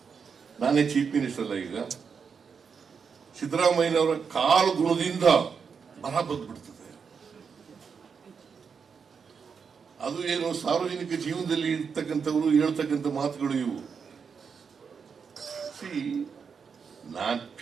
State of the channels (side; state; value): left; quieter; 6.1 dB